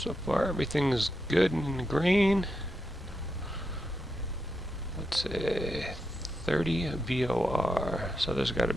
far everything's good and green. Let's see, 30 VOR. So there's got to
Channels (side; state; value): both; normal; correlation 0.85